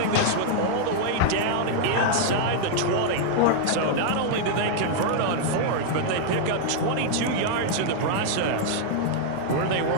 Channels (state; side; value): different; both; correlation -0.01